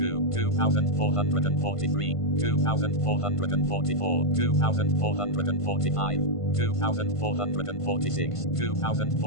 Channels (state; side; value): late; right; 1.5 ms